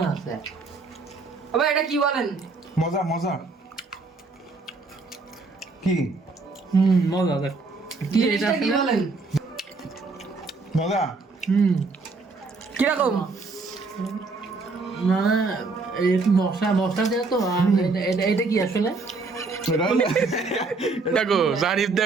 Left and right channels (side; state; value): left; quieter; 3.9 dB